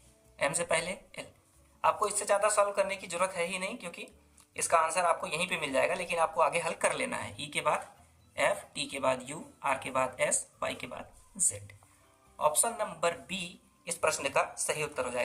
एम से पहले एल। आपको इससे ज़्यादा सॉल्व करने की जरूरत है ही नहीं, क्योंकि इसका आंसर आपको यहीं पे मिल जाएगा, लेकिन आपको आगे हल कर लेना है। ई के बाद एफ, टी के बाद यू, आर के बाद एस, वाई के बाद जेड। ऑप्शन नंबर बी इस प्रश्न का सही उत्तर हो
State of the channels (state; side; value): identical; both; correlation 1.00